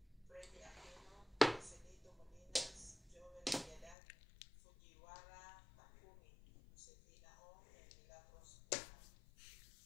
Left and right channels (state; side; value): drops out; right; at 4.0 s